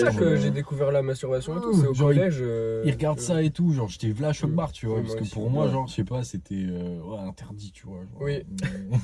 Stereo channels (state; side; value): identical; both; correlation 1.00